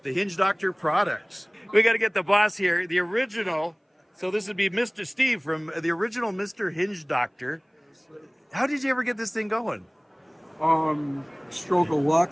the Hinge Doctor Products. We got to get the boss here, the original. So this would be Mr. Steve from the original Mr. Hinge Doctor. How did you ever get this thing going? Stroke of luck.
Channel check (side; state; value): both; identical; correlation 1.00